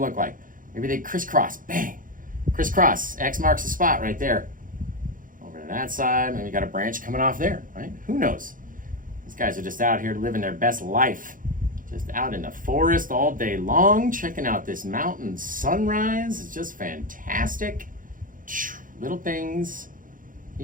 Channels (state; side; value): late; left; 0.39 ms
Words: like. Maybe they crisscross. Bang. Crisscross. X marks the spot right there. Over to that side. Maybe you got a branch coming off there, right? Who knows? These guys are just out here living their best life. Just out in the forest all day long, checking out this mountain sunrise. It's just fantastic. Little things